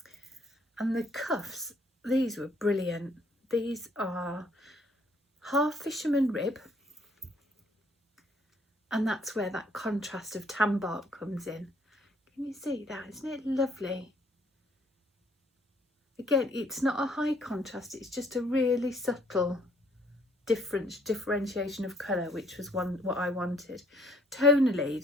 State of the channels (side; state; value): both; normal; correlation 0.64